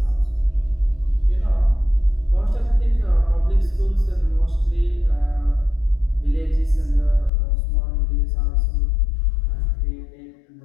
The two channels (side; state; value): right; drops out; at 7.3 s